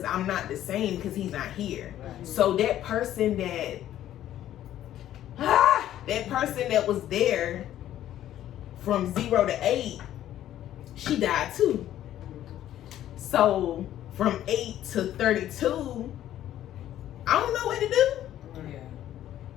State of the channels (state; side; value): quieter; right; 12.2 dB